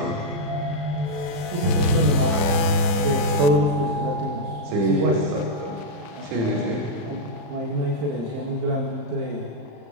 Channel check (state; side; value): late; left; 34 ms